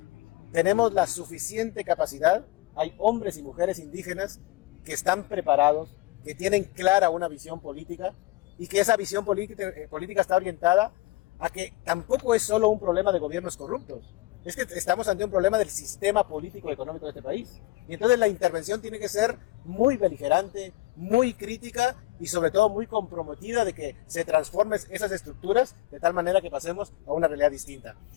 Tenemos la suficiente capacidad, hay hombres y mujeres indígenas que están preparados, que tienen clara una visión política y que esa visión política está orientada a que tampoco es solo un problema de gobiernos corruptos, es que estamos ante un problema del sistema político y económico de este país. Y entonces la intervención tiene que ser muy beligerante, muy crítica y sobre todo muy comprometida de que se transformen esas estructuras de tal manera que pasemos a una realidad distinta.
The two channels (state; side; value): quieter; right; 19.5 dB